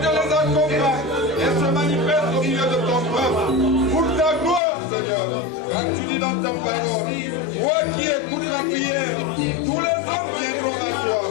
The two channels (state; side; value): drops out; right; at 4.6 s